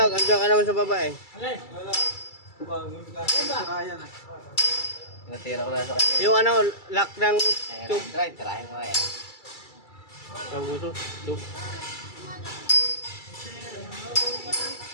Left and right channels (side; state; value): right; late; 2.3 ms